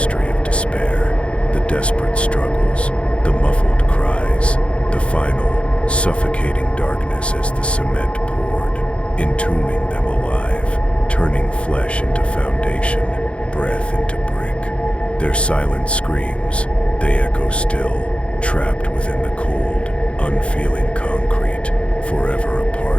of despair, the desperate struggles, the muffled cries, the final, suffocating darkness as the cement poured, entombing them alive, turning flesh into foundation, breath into brick. Their silent screams, they echo still, trapped within the cold, unfeeling concrete, forever a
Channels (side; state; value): right; late; 0.060 ms